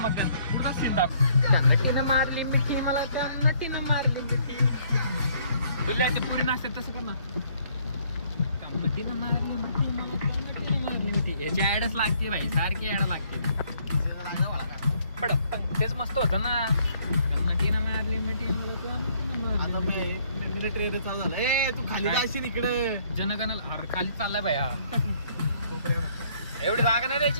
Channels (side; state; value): both; inverted; correlation -0.65